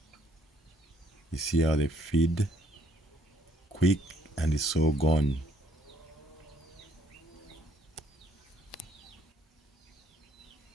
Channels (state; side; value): normal; both; correlation 0.66